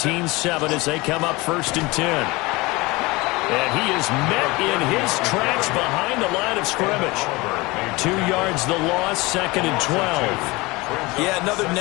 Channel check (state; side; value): quieter; right; 23.0 dB